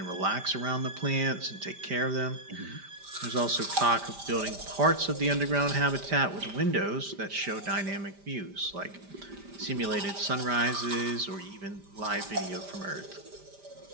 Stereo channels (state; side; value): late; left; 5.0 ms